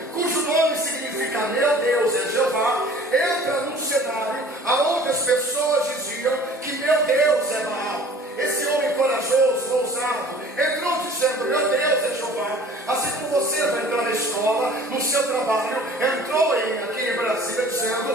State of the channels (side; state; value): both; normal; correlation 0.48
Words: cujo nome significa meu Deus é Jeová, entra num cenário onde as pessoas diziam que meu Deus é Baal. Esse homem corajoso, ousado, entrou dizendo: meu Deus é Jeová. Assim como você vai entrar na escola, no seu trabalho, entrou aqui em Brasília